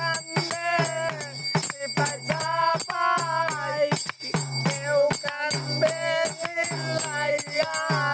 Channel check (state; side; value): identical; both; correlation 1.00